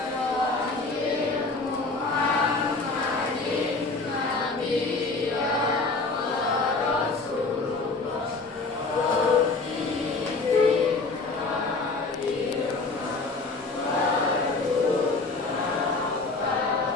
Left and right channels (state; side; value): quieter; right; 3.7 dB